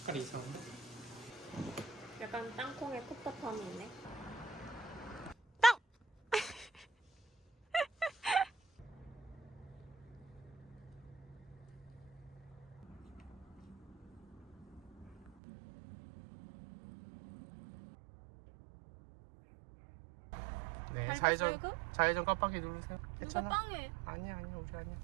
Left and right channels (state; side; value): drops out; left; at 15.4 s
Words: 색깔이 이상한데? 약간 땅콩의 텁텁함이 있네. 네, 밟았어요, 그? 좌회전 깜빡이 누르세요. 누가 괜찮아. 빵해? 아니야, 우리 아니야.